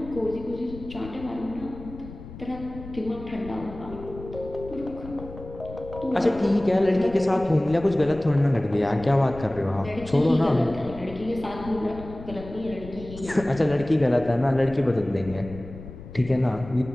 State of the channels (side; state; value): left; noise; rumble, 14 dB below the sound